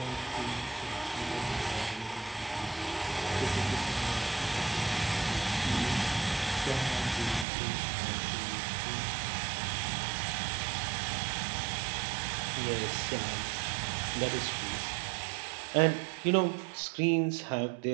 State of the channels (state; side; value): drops out; left; at 7.5 s